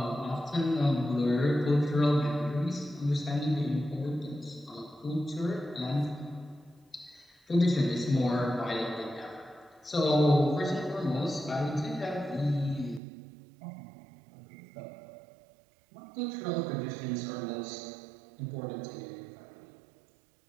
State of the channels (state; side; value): drops out; left; at 13.0 s